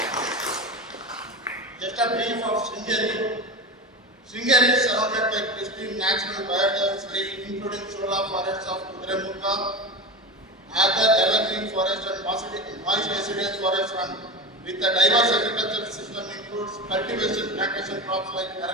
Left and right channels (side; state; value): both; normal; correlation 0.24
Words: Just a brief of Sringeri. Sringeri is surrounded by pristine natural biodiversity, including Shola forests of Kudremukha, other evergreen forest and moist deciduous forest, and with a diverse agricultural system includes cultivation, plantation crops like